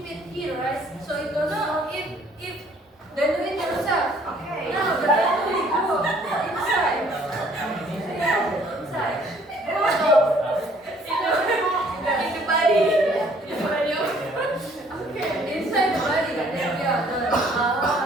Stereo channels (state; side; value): normal; both; correlation 0.60